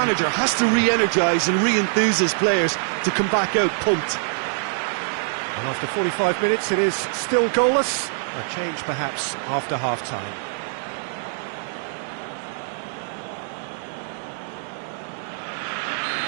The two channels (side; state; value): left; silent; digital silence